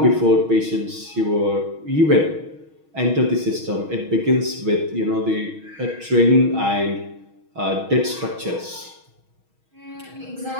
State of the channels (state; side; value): late; left; 6.3 ms